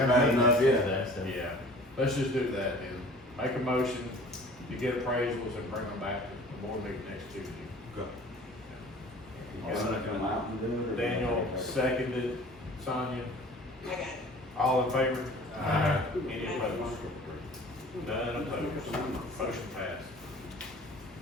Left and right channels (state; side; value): normal; both; correlation 0.46